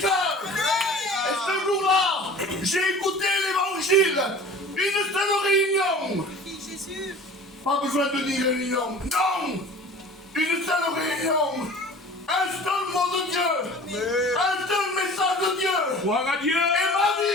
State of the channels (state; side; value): normal; both; correlation 0.42